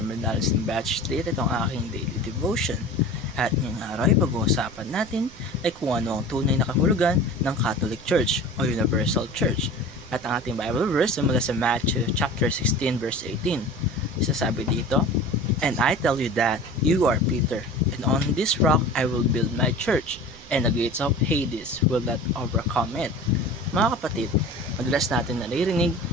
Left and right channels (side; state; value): right; noise; rumble, 21 dB below the sound